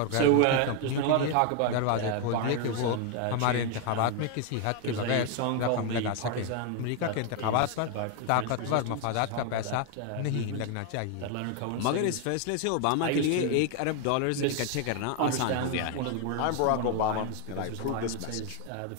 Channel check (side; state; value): both; different; correlation 0.01